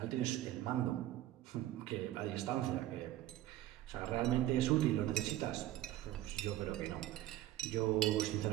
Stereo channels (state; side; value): quieter; left; 14.3 dB